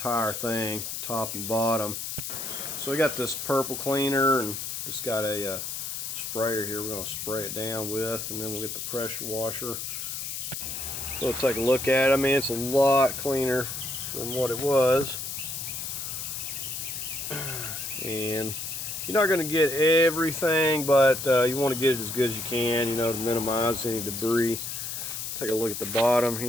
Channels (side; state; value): left; noise; hiss, 5 dB below the sound